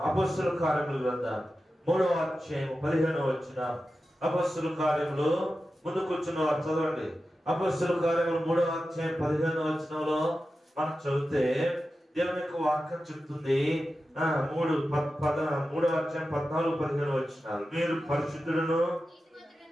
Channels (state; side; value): normal; both; correlation 0.92